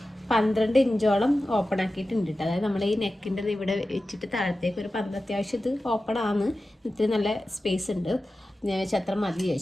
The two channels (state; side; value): normal; both; correlation 0.94